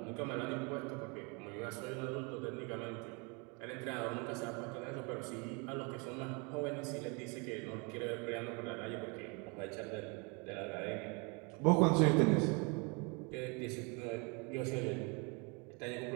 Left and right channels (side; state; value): left; quieter; 31.6 dB